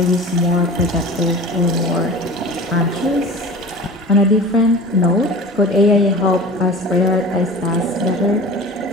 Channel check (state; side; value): normal; both; correlation 0.38